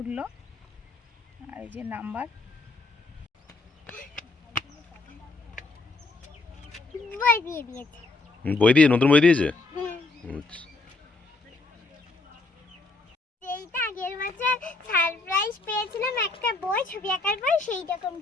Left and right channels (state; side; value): quieter; right; 3.4 dB